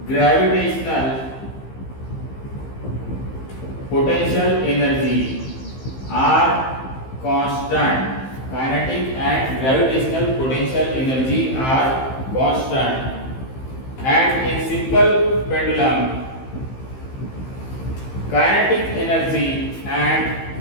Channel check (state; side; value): late; right; 15 ms